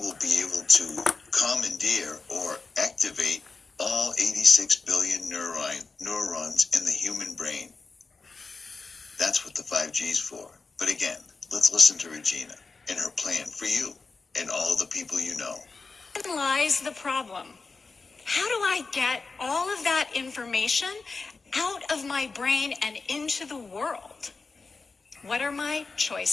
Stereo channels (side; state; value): right; quieter; 4.2 dB